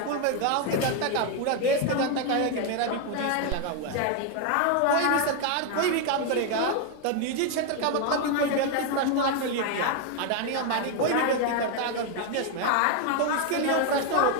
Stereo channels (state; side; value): different; both; correlation 0.01